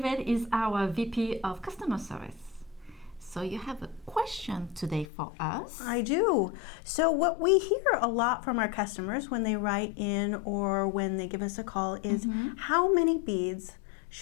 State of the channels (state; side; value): drops out; right; at 5.1 s